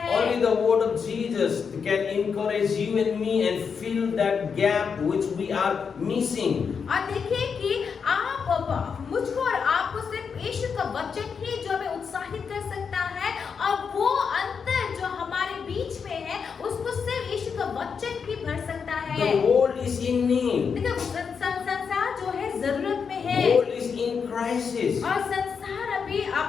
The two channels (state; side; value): quieter; right; 6.1 dB